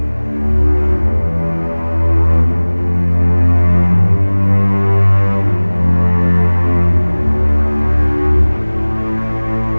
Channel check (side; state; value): both; inverted; correlation -1.00